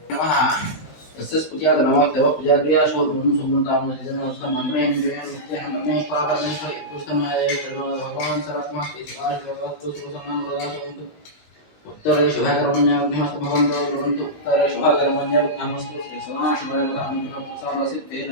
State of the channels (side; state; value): right; late; 20 ms